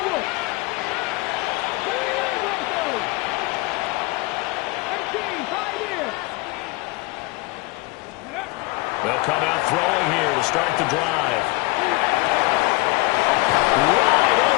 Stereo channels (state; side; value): quieter; right; 23.3 dB